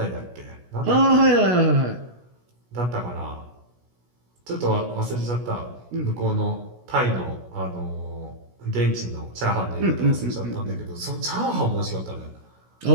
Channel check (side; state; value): left; late; 16 ms